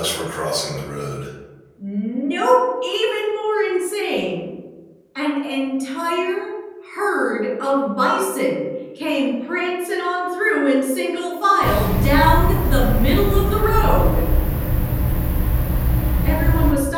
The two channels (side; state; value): both; identical; correlation 1.00